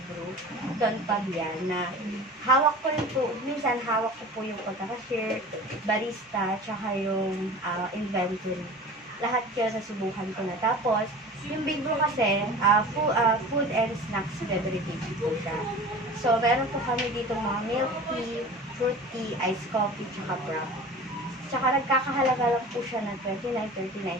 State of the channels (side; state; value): both; normal; correlation 0.38